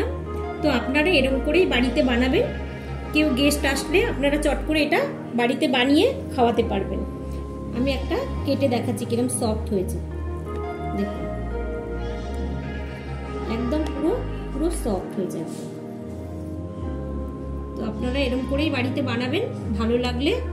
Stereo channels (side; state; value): both; identical; correlation 1.00